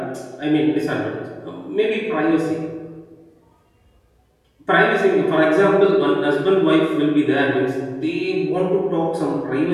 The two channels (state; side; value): identical; both; correlation 1.00